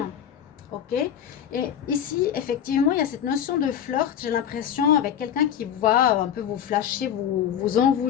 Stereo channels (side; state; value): right; quieter; 9.3 dB